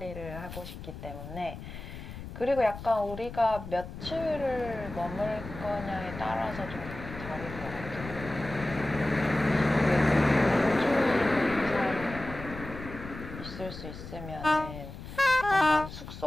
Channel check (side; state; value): left; noise; rumble, 11 dB below the sound